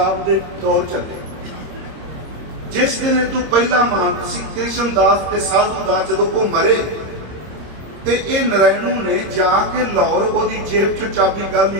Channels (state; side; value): late; left; 26 ms